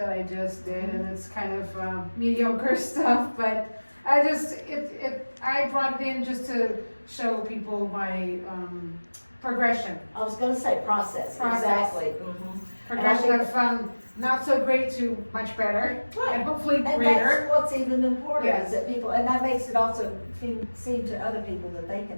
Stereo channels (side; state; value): both; inverted; correlation -1.00